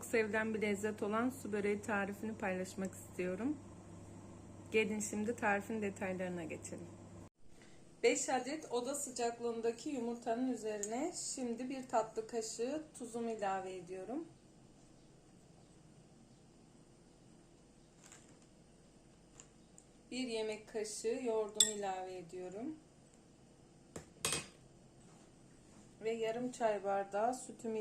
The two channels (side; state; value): both; identical; correlation 1.00